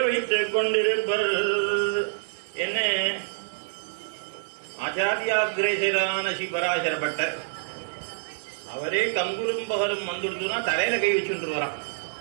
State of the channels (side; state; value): left; silent; digital silence